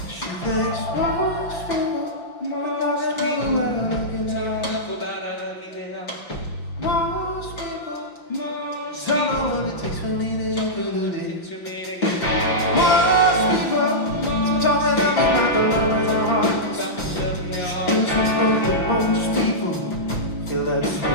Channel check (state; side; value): late; right; 6.0 ms